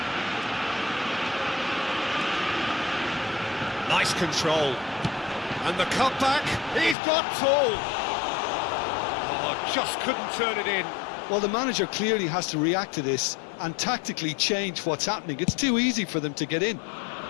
Nice control. And the cutback, he's got tall. Oh, just couldn't turn it in. Well, the manager clearly has to react to this and tactically change what's happening. It's too easy for them to get in.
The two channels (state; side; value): drops out; right; at 7.0 s